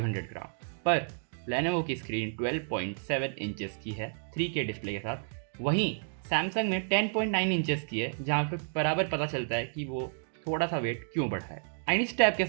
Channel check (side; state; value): left; silent; digital silence